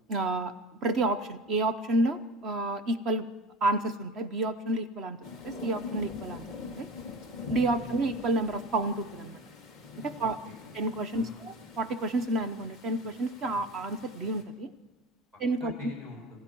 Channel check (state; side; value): normal; both; correlation 0.33